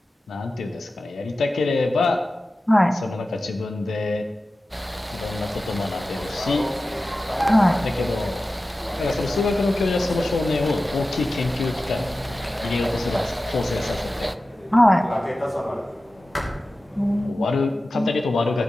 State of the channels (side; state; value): both; normal; correlation 0.95